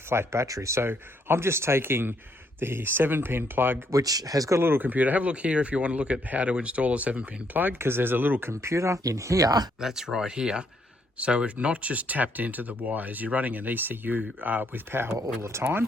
battery. So I'm just taking the 7-pin plug, which has got a little computer. Have a look here if you want to look at how to install a 7-pin plug, because there's a little computer in here. That's right here. So it's not just tapped into the wires. You're running an ECU with power all the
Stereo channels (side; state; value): both; normal; correlation 0.72